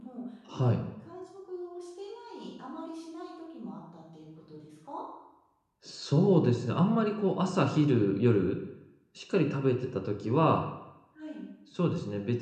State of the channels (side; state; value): both; identical; correlation 1.00